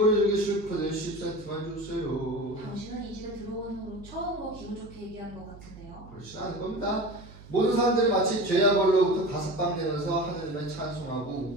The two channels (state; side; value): noise; right; hum, 18 dB below the sound